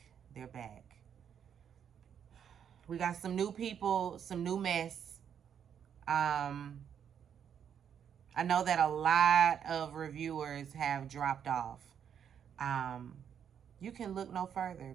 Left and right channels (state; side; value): quieter; left; 8.4 dB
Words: They're back. We got some new people, some new mess. I know that a lot of reviewers have dropped off. You can look no further